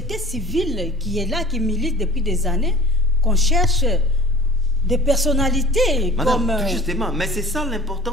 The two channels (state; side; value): normal; both; correlation 0.44